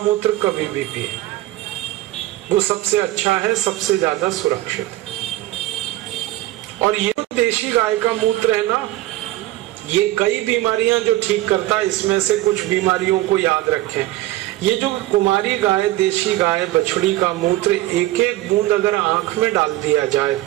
कभी भी पिए, वो सबसे अच्छा है, सबसे ज्यादा सुरक्षित है। और ये देशी गाय का मूत्र है ना, ये कई बीमारियां जो ठीक करता है, इसमें से कुछ बीमारियों को याद रखें। ये जो कुमारी गाय, देशी गाय, बछड़ी का मूत्र एक एक बूंद अगर आंख में डाल दिया जाए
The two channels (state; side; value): quieter; left; 16.5 dB